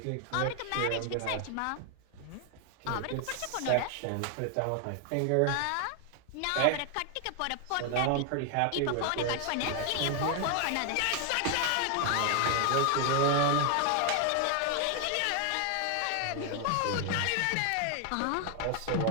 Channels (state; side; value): different; both; correlation 0.00